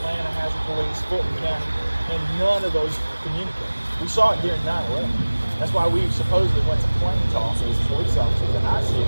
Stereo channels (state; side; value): inverted; both; correlation -1.00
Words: has a police. Fulton County. And none of those communicate. We saw it during 9/11. That's why we supposedly went to plane toss as police officers in our city